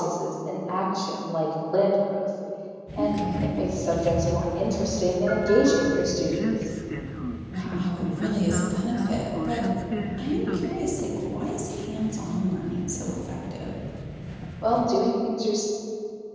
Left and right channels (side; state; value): both; identical; correlation 1.00